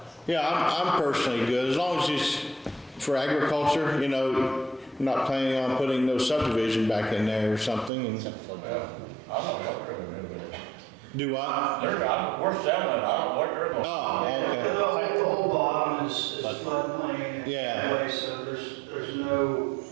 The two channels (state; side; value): drops out; left; at 7.9 s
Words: it. yeah, I'm personally good, as long as it's for agriculture, you know, I'm not planning on putting no subdivision back in there or something, and I'm not helping them with it. do what? We're selling it, I don't know what they're going to. Oh, okay, The whole bottom is floodplain Yeah. anyway, so there's no